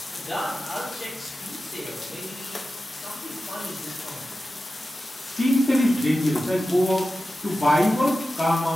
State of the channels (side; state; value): both; normal; correlation 0.94